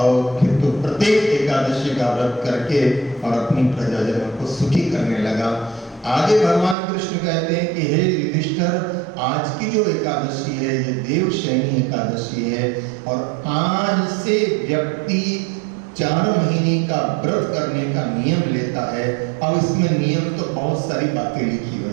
फिर तो प्रत्येक एकादशी का व्रत करके और अपनी प्रजाजनों को सुखी करने लगा। आगे भगवान कृष्ण कहते हैं कि हे युधिष्ठिर, आज की जो एकादशी है ये देवशयनी एकादशी है, और आज से व्यक्ति 4 महीने का व्रत करने का नियम लेता है। अब इसमें नियम तो बहुत सारी बातें लिखी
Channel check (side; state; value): left; drops out; at 6.8 s